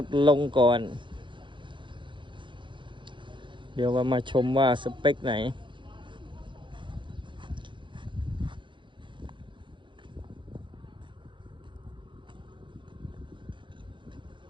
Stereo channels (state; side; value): late; left; 0.23 ms